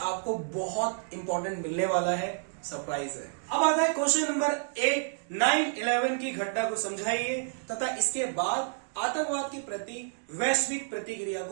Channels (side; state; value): left; silent; digital silence